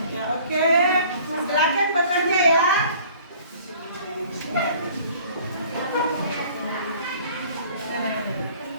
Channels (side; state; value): both; inverted; correlation -0.52